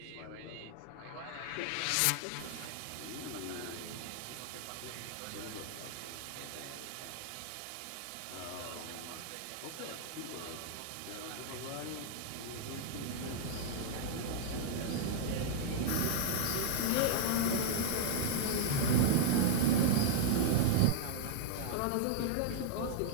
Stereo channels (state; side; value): different; both; correlation -0.01